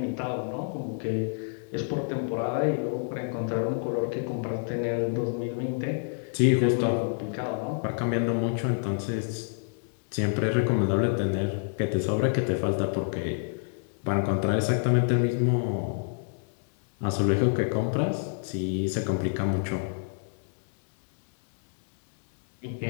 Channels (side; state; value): right; silent; digital silence